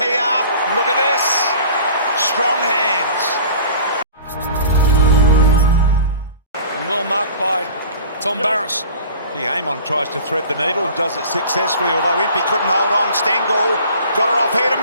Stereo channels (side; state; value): both; inverted; correlation -0.44